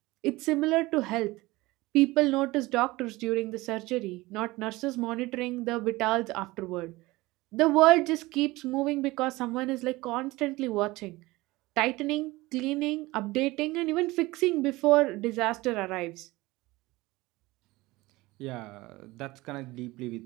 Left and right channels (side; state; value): left; quieter; 20.4 dB